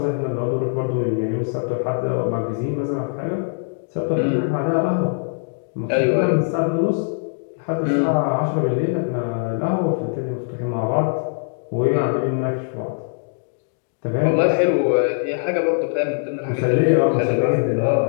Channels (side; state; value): right; silent; digital silence